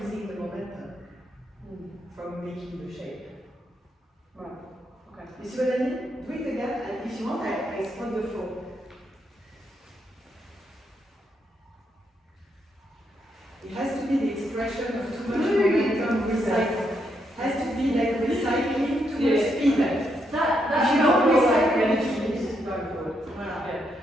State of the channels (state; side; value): normal; both; correlation 0.78